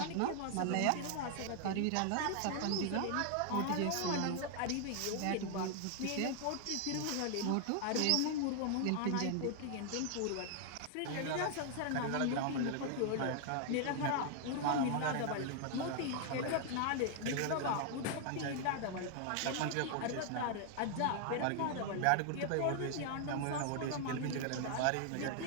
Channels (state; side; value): different; both; correlation 0.00